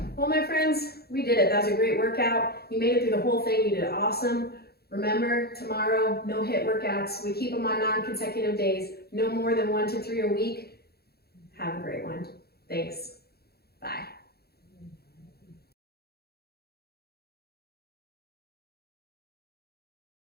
Well, my friends, we did it. That was a great workout. You made it through the whole thing. You did awesome. Remember, tomorrow, no HIIT workouts. We keep them on non-consecutive days. No more than 1 to 3 a week. Have a great one. Thanks.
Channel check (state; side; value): late; right; 0.46 ms